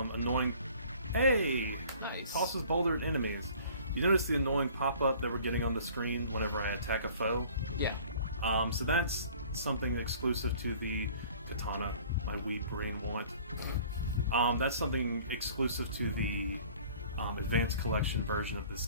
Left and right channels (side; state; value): both; inverted; correlation -0.51